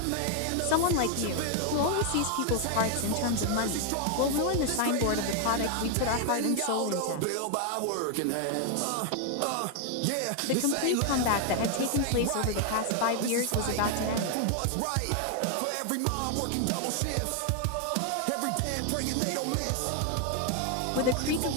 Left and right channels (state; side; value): different; both; correlation 0.00